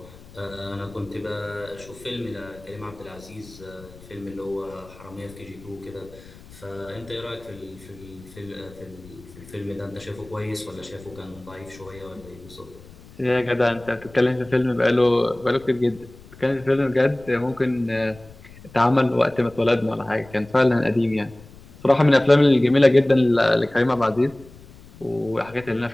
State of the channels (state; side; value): noise; left; rumble, 21 dB below the sound